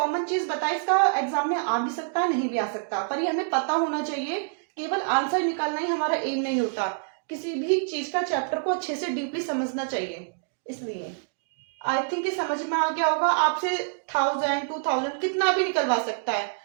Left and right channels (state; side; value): silent; left; digital silence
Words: चीज बताई, इसका एग्जाम में आ भी सकता है, नहीं भी आ सकता, पर ये हमें पता होना चाहिए। केवल आंसर निकालना ही हमारा एम नहीं होता, किसी भी चीज का चैप्टर को अच्छे से डीपली समझना चाहिए। इसलिए आई थिंक ये समझ में आ गया होगा। आपसे 1000 2000 कितना भी निकलवा सकता है,